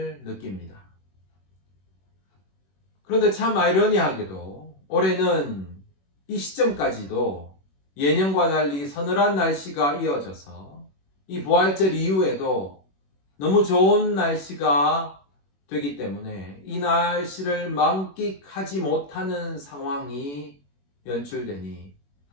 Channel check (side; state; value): right; late; 21 ms